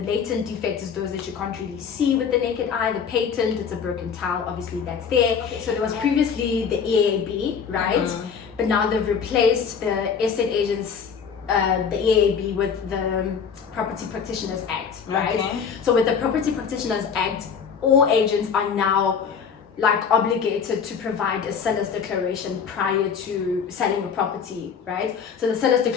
latent defect is those that you can't really see with the naked eye. The patent, it's a broken tile, obviously that's there. Okay, so there was previously the EAB, right? But now they've replaced the estate agents, the EAB, with the Property Practitioners Act, right? Okay. So with the Property Practitioners Act, all agents are now like obligated to provide a seller's declaration prior to selling a property, right? So the seller's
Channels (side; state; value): right; quieter; 6.6 dB